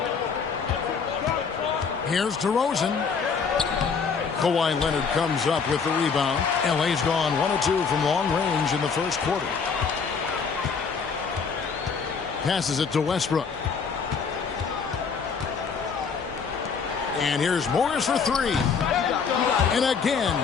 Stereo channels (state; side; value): quieter; right; 5.7 dB